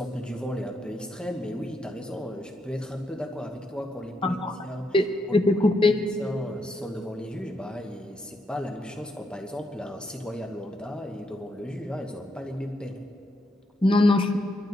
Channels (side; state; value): both; normal; correlation 0.78